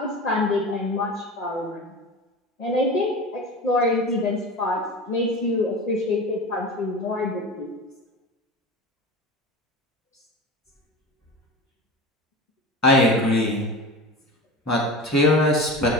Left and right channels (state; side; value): normal; both; correlation 0.31